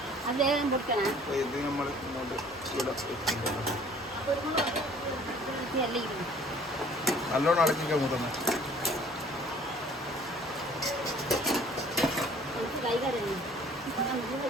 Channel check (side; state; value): both; normal; correlation 0.53